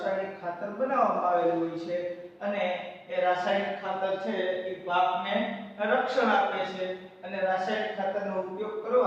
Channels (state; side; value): identical; both; correlation 1.00